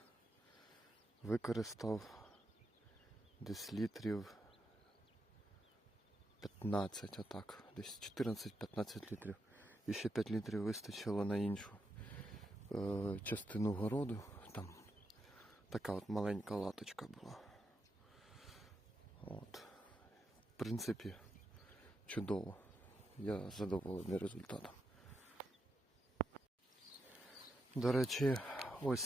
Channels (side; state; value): both; normal; correlation 0.84